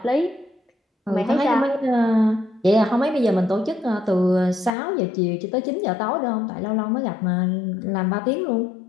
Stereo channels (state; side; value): drops out; right; at 4.7 s